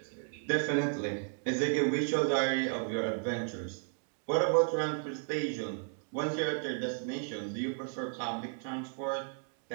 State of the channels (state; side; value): silent; left; 55 dB below the other